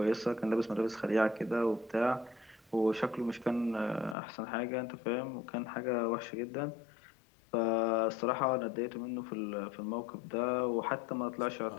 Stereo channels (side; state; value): right; drops out; at 4.2 s